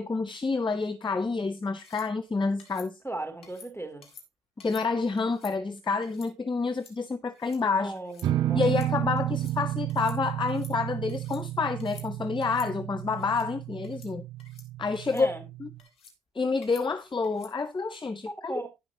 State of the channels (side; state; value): both; normal; correlation 0.65